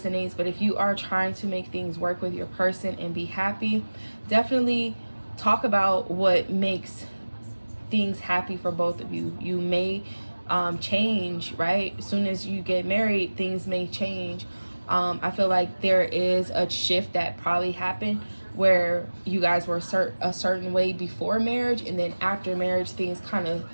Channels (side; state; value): both; inverted; correlation -1.00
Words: But if you are trying to make things work with your person and be happy, definitely talk about what makes things happy for both of you. You may change, right? As soon as you get married, things may change. I feel like there is a shift that probably happened where you guys were a certain way before marriage, and then after marriage, things kind of,